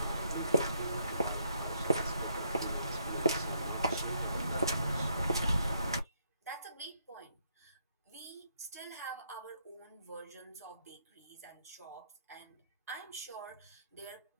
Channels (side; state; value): both; inverted; correlation -0.73